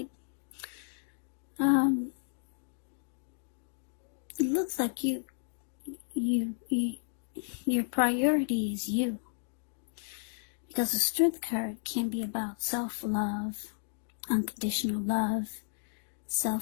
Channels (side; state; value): right; silent; digital silence